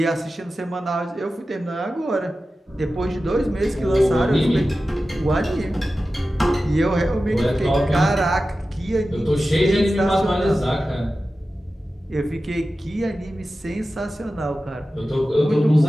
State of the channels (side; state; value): both; normal; correlation 0.94